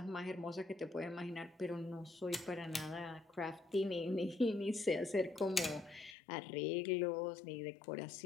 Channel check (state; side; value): drops out; right; at 6.2 s